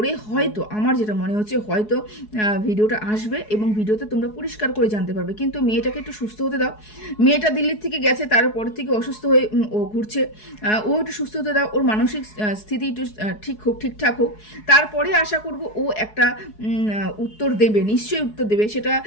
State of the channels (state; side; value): late; right; 4.7 ms